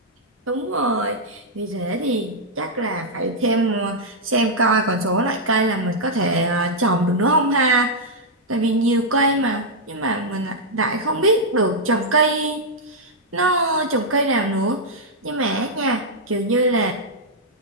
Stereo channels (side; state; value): both; normal; correlation -0.05